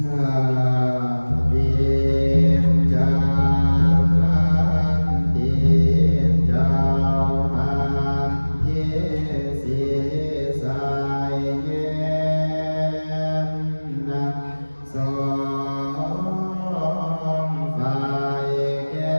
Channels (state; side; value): inverted; both; correlation -1.00